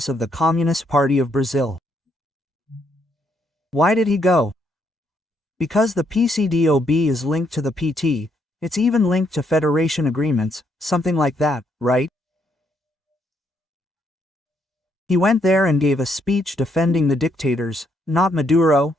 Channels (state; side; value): normal; both; correlation 0.74